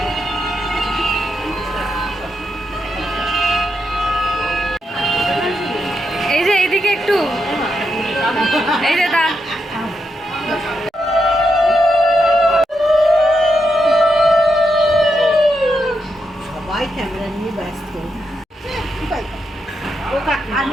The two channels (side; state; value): both; normal; correlation 0.83